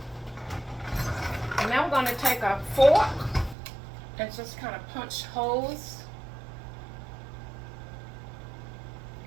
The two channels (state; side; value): drops out; left; at 3.6 s